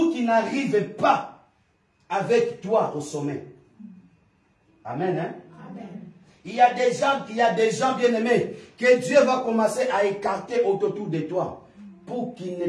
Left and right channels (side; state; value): both; identical; correlation 1.00